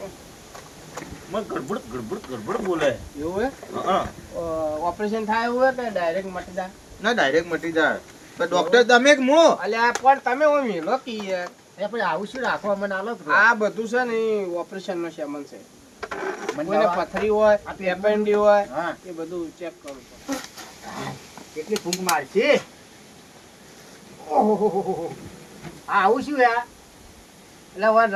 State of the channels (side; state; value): both; identical; correlation 1.00